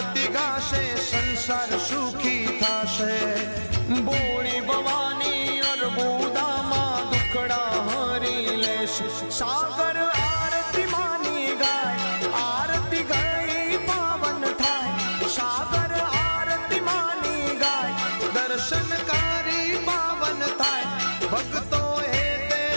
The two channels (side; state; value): both; inverted; correlation -1.00